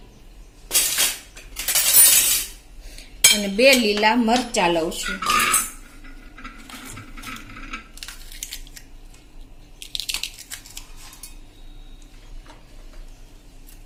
અને 2 લીલા મરચા લઉં છું।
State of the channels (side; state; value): both; identical; correlation 1.00